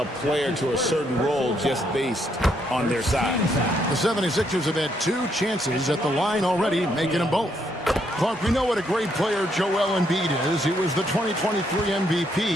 player to a certain role just based on their size. The 76ers have had 2 chances at the line already, making them both. Clark, we know what a great player Joel Embiid is. He was the 2023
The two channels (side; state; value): both; normal; correlation 0.74